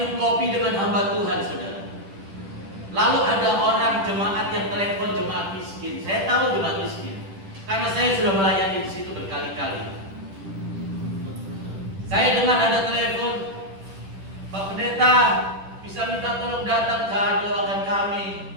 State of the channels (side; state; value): left; late; 10 ms